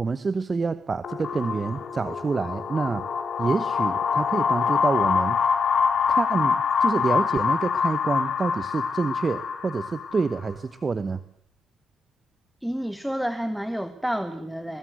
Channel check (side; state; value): both; normal; correlation 0.83